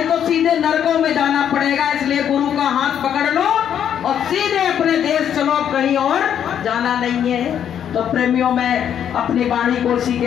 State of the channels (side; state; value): right; quieter; 9.2 dB